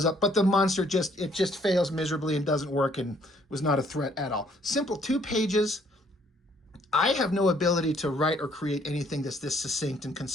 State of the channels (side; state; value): both; normal; correlation 0.65